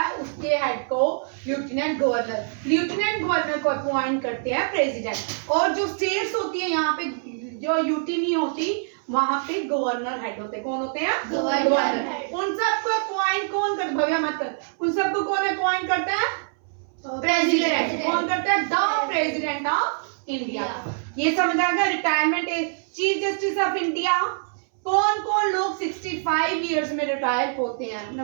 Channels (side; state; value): left; silent; 62 dB below the other